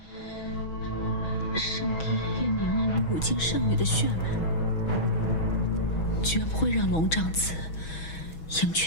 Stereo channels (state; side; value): late; right; 6.2 ms